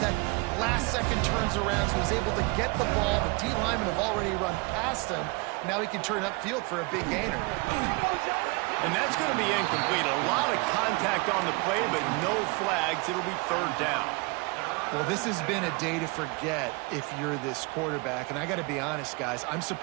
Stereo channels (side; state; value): left; quieter; 28.4 dB